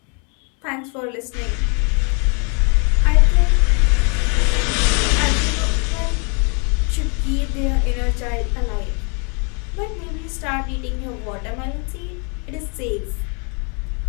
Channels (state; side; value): quieter; right; 36.3 dB